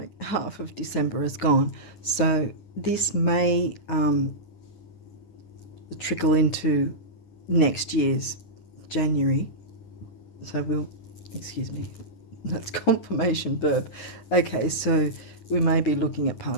half of December is gone, so this may trickle into next year's January. So we'll, excuse me, that's confirmation verb. Okay, so we may be looking at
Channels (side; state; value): right; late; 9.5 ms